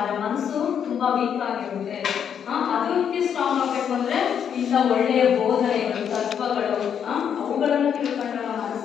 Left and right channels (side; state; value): right; quieter; 8.2 dB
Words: ಮನಸ್ಸು ತುಂಬಾ ವೀಕ್ ಆಗಿರುತ್ತೆ. ಅದಕ್ಕೆ ಸ್ಟ್ರಾಂಗ್ ಆಗಬೇಕು ಅಂದ್ರೆ ಇಂಥ ಒಳ್ಳೆಯ ಬೋಧನೆಗಳು, ತತ್ವಗಳು ಅವುಗಳನ್ನು ತಿಳ್ಕೊಂಡ